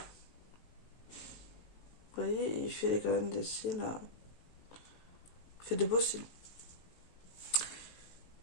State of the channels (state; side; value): late; right; 18 ms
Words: Vous voyez, il fait quand même des cils. Il fait de beaux cils.